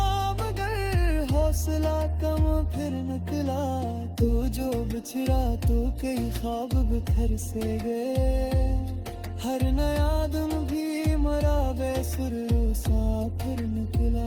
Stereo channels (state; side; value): identical; both; correlation 1.00